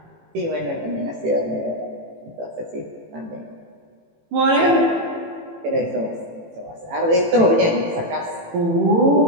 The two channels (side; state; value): left; late; 18 ms